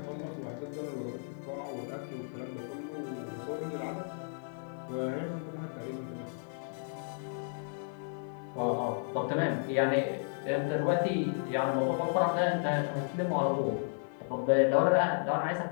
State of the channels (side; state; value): right; silent; 56 dB below the other